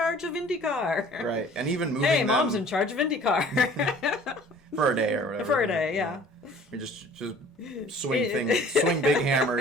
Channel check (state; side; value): normal; both; correlation 0.50